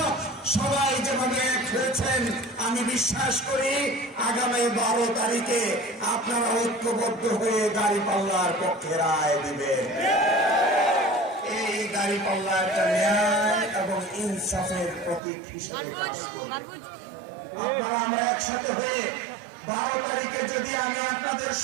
সবাই যেভাবে এক হয়েছেন, আমি বিশ্বাস করি আগামী 12 তারিখে আপনারা ঐক্যবদ্ধ হয়ে দাঁড়িপাল্লার পক্ষে রায় দিবেন। এই দাঁড়িপাল্লা একটা ন্যায় এবং ইনসাফের প্রতীক হিসেবে কাজ করবে। আপনারা আমরা একসাথে হয়ে 12 তারিখে যদি আমি আপনাদের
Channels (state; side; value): drops out; left; at 15.2 s